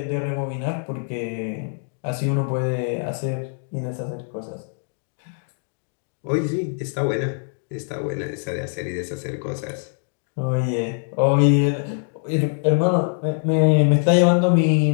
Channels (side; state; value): right; silent; 63 dB below the other